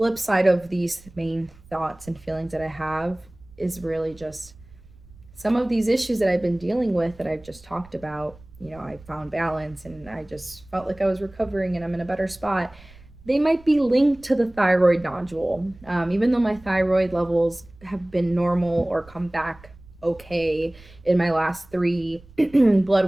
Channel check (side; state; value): right; noise; rumble, 23 dB below the sound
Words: side of these main thoughts and feelings that I have is really just some of these issues that I've been dealing with that I've just talked about. I found balance and I just felt like I was recovering and I'm in a better spot. They might be linked to the thyroid nodule. Even though my thyroid levels have been normal or come back okay in my last three